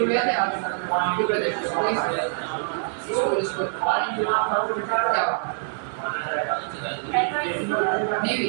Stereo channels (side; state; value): left; silent; digital silence